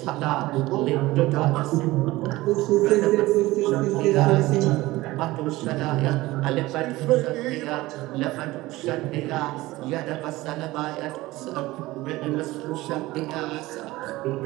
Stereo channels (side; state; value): left; quieter; 18.8 dB